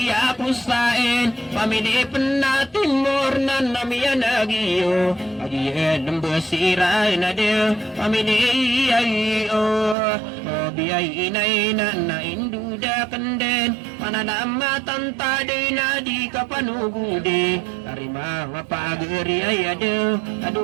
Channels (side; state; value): left; drops out; at 10.0 s